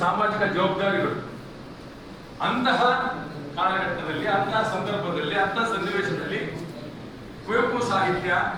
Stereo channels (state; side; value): identical; both; correlation 1.00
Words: ಸಾಮಾಜಿಕ ಜವಾಬ್ದಾರಿಗಳು. ಅಂತಹ ಕಾಲಘಟ್ಟದಲ್ಲಿ, ಅಂತಹ ಸಂದರ್ಭದಲ್ಲಿ, ಅಂತಹ ಸನ್ನಿವೇಶದಲ್ಲಿ ಕುವೆಂಪು ಸಾಹಿತ್ಯ